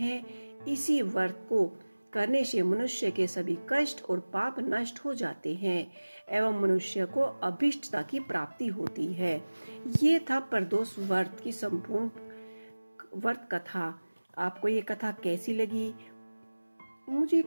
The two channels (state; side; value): inverted; both; correlation -1.00